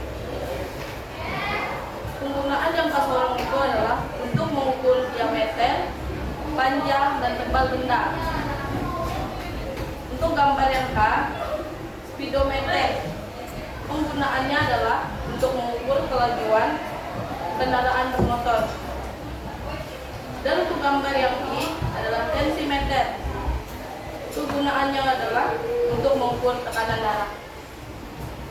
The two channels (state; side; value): identical; both; correlation 1.00